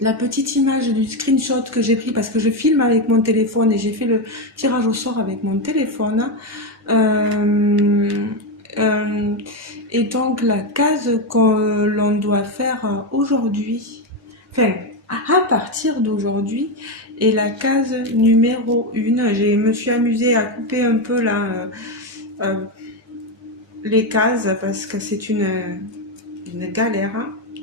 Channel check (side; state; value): both; normal; correlation 0.09